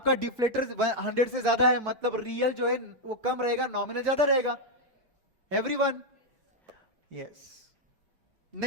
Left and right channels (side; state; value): left; late; 5.5 ms